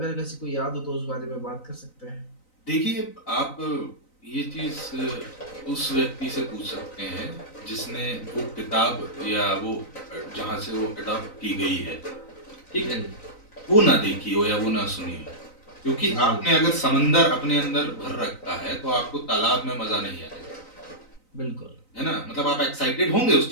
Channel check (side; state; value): right; late; 3.9 ms